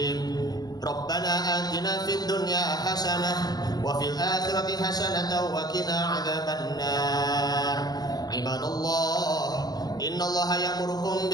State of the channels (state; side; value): late; right; 0.19 ms